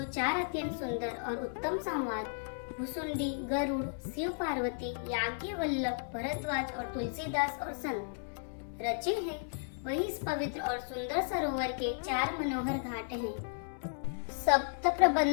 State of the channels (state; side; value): silent; right; 55 dB below the other